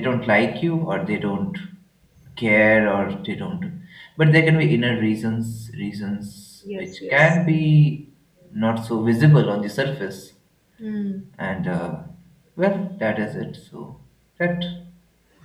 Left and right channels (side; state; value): both; identical; correlation 1.00